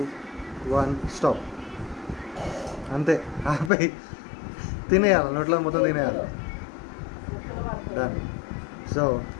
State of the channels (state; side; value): drops out; right; at 3.7 s